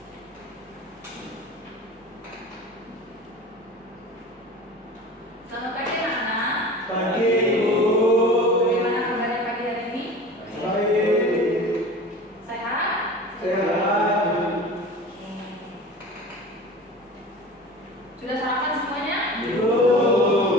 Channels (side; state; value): both; normal; correlation 0.37